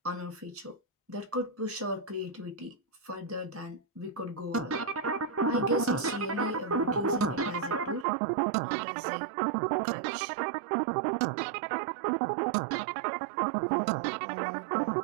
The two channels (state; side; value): drops out; left; at 8.1 s